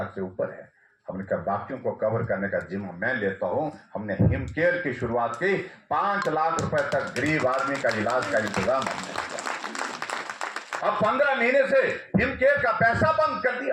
से ऊपर है। हमने कहा बाकियों को कवर करने का जिम्मा मैं लेता हूं। हमने हिम केयर की शुरुआत की। 5 लाख रुपए तक गरीब आदमी का इलाज का इंतजाम हमने किया। अब 15 महीने से हिम केयर का पैसा बंद कर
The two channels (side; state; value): both; identical; correlation 1.00